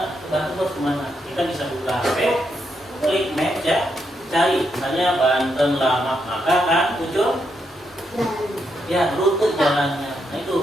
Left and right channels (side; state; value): both; normal; correlation 0.80